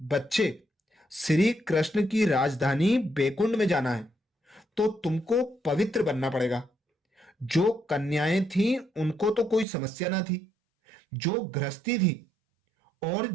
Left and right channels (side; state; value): left; drops out; at 9.7 s